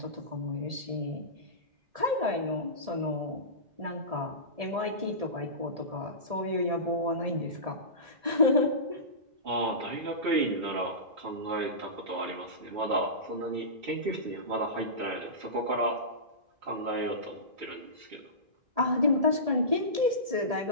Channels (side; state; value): left; late; 1.7 ms